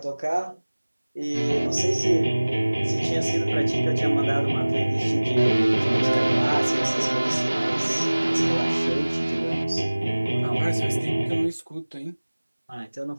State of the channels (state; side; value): inverted; both; correlation -1.00